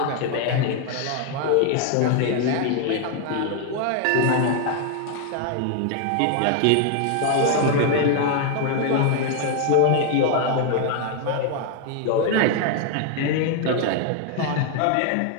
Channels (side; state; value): both; different; correlation 0.00